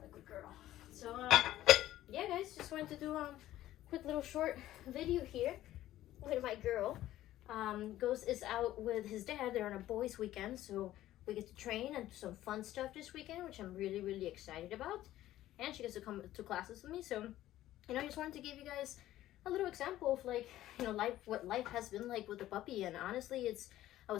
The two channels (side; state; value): right; quieter; 14.2 dB